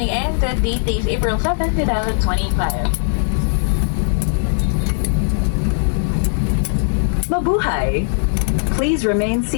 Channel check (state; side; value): silent; right; digital silence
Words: and the date is April 7, 2025. Mabuhay! Please remain